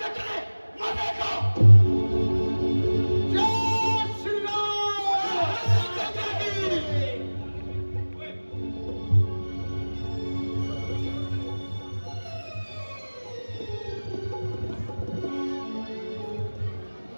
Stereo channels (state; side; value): inverted; both; correlation -1.00